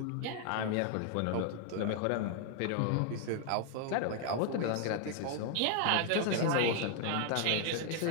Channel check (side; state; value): both; different; correlation 0.00